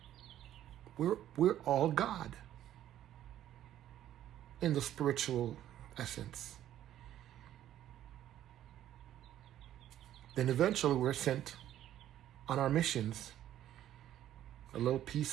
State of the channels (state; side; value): quieter; left; 12.0 dB